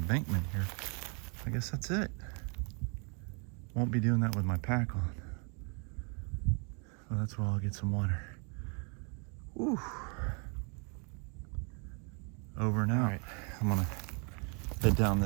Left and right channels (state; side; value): quieter; left; 36.5 dB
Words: here. I guess that's it. Won't be doing that with my pack on. Well, that's where I'll get some water. Woo. Over and out. All right, I'm gonna head down